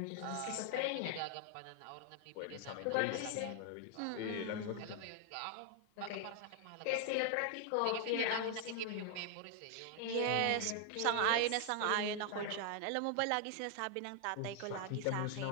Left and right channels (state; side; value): different; both; correlation 0.00